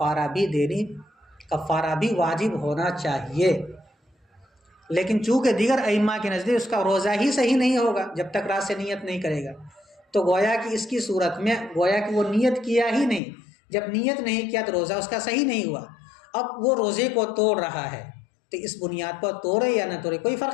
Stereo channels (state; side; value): drops out; right; at 13.2 s